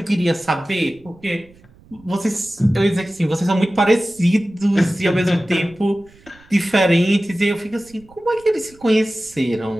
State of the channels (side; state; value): right; noise; rumble, 27 dB below the sound